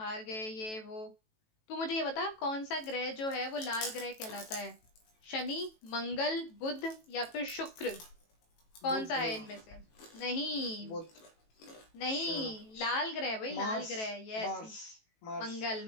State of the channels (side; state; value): right; late; 18 ms